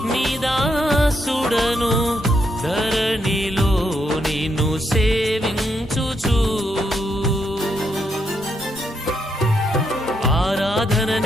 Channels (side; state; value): both; normal; correlation 0.78